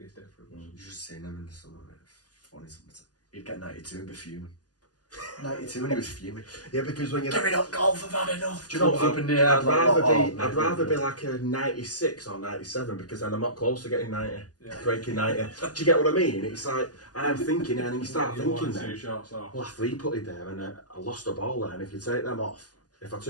difference. You just seen them in the summer, mate. Funny something. You'd get 92 and be fuming. 92 and he was fuming. Yeah, because when you're Give it up, golf, I've had enough. do you know, Up in the air. I'd rather be like a 96 or 97 because then I'm not close to getting 90, breaking 90. Do you get what I mean? It's like I'm thinking, and then you start thinking then, well, I 3-putted there and I lost the ball there, and if you take them off, if I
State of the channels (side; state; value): right; late; 0.68 ms